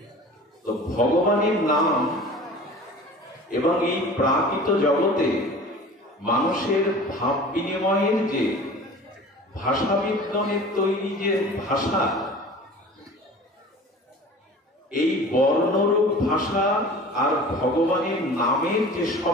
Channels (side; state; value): both; normal; correlation 0.41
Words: তো ভগবানের নাম এবং এই প্রাকৃত জগতে মানুষের ভাব বিনিময়ের যে ভাষা বিজ্ঞানের তৈরি যে ভাষা, এই বর্ণরূপ ভাষা আর ভগবানের নামের যে